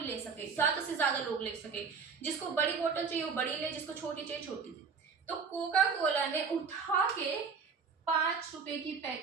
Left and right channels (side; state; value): left; quieter; 5.6 dB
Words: ले सके, ज्यादा से ज्यादा लोग ले सके, जिसको बड़ी बोतल चाहिए वो बड़ी ले, जिसको छोटी चाहिए छोटी ले। तो कोका कोला ने उठा के 5 रुपए की